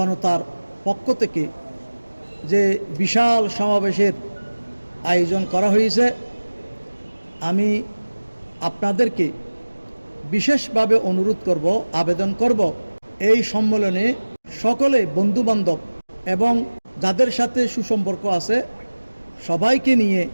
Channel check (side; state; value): both; inverted; correlation -1.00